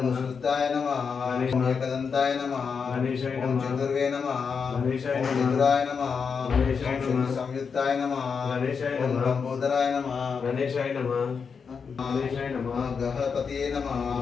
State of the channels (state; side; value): quieter; right; 5.9 dB